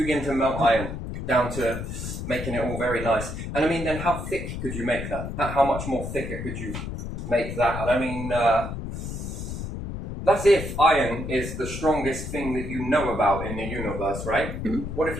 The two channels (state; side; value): noise; left; rumble, 6 dB below the sound